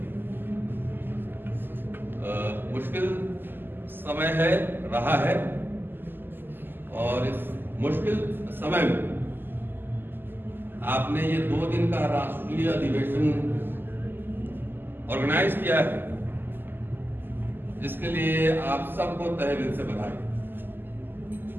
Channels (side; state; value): left; late; 0.095 ms